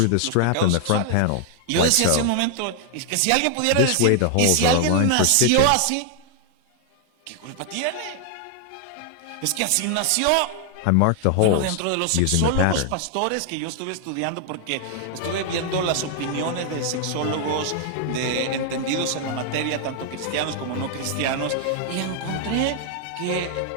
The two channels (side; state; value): both; different; correlation 0.00